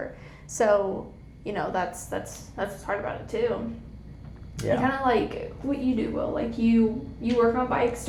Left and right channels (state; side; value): identical; both; correlation 1.00